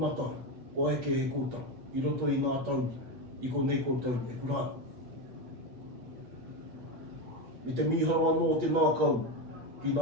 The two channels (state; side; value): late; left; 8.4 ms